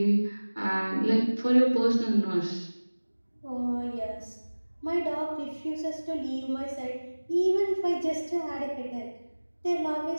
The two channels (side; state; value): both; inverted; correlation -1.00